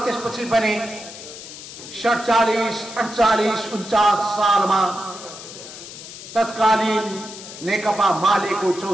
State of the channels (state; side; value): noise; left; hiss, 13 dB below the sound